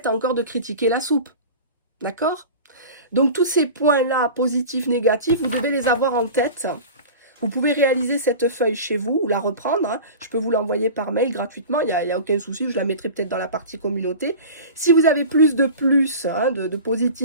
encore de critiquer la soupe. D'accord? Donc tous ces points-là, positifs, négatifs, vous devez les avoir en tête. Vous pouvez réaliser cette feuille chez vous, ou la reprendre, hein. Je peux vous l'envoyer par mail gratuitement, il n'y a aucun souci, je la mettrai peut-être dans la partie communauté. Si vous avez plus, hein, de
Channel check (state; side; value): inverted; both; correlation -0.34